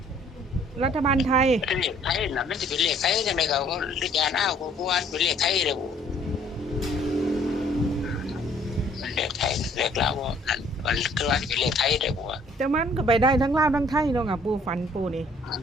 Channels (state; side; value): normal; both; correlation 0.59